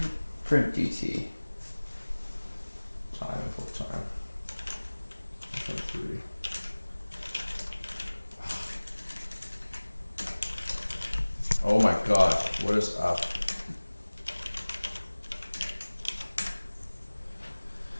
Print dt. time full time. 3. Oh my god, what is up?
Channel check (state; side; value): inverted; both; correlation -1.00